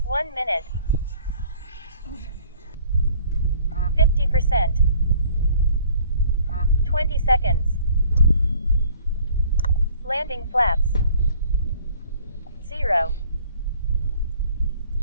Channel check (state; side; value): inverted; both; correlation -0.54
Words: 1 minute. 50%. 20 seconds. Landing flaps. 0.